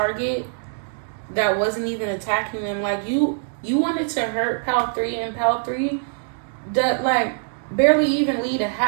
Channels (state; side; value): silent; left; digital silence